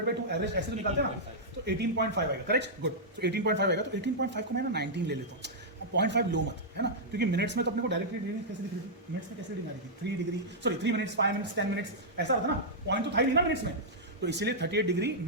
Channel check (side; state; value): both; normal; correlation -0.09